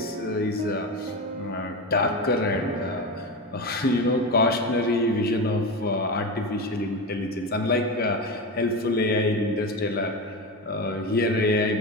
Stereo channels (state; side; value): normal; both; correlation 0.21